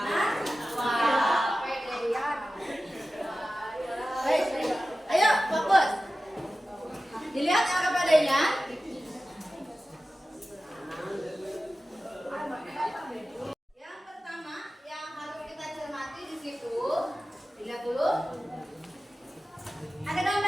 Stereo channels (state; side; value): normal; both; correlation 0.95